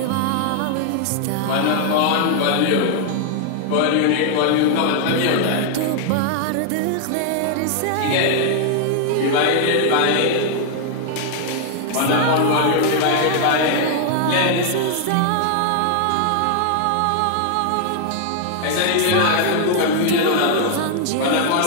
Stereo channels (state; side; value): different; both; correlation 0.00